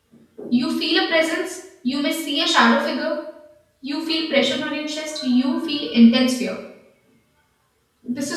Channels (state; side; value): identical; both; correlation 1.00